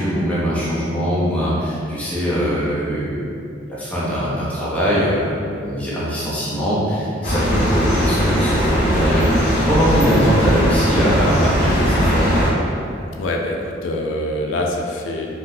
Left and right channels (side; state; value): both; normal; correlation 0.58